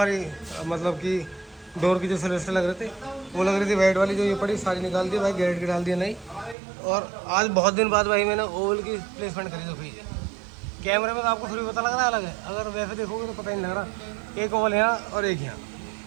मतलब कि डोर की जो सेलेस्टर लग रहे थे, वो लग रही थी वाइट वाली, जो ये पड़ी सारी निकाल दी भाई, गैरेट की डाल दिया नहीं। और आज बहुत दिन बाद भाई मैंने ओवल की प्लेसमेंट करी। तो भाई कैमरे में तो आपको थोड़ी पता लग रहा है अलग है, अगर वैसे देखोगे तो पता ही नहीं लग रहा। एक ओवल यहाँ और एक यहाँ,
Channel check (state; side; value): drops out; left; at 6.6 s